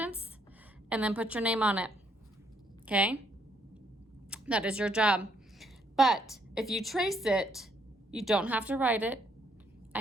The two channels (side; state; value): both; normal; correlation 0.70